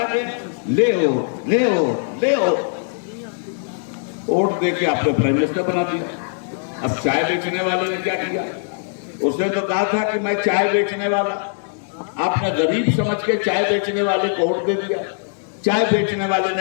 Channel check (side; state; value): right; silent; 65 dB below the other